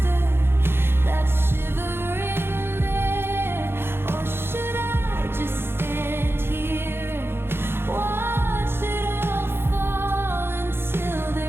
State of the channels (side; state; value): left; late; 0.11 ms